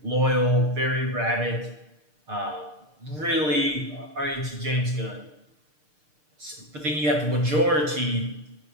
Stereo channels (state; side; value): late; left; 6.6 ms